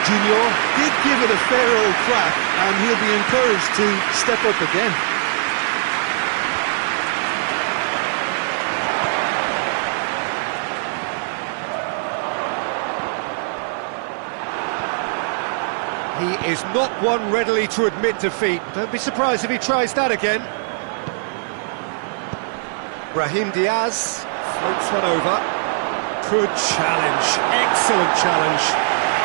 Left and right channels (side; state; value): left; silent; 56 dB below the other